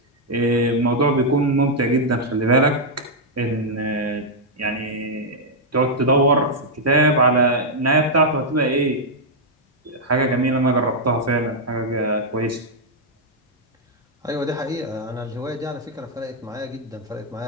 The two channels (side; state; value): both; normal; correlation -0.04